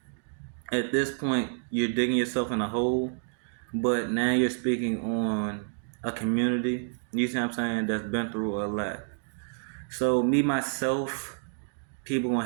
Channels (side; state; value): left; silent; 59 dB below the other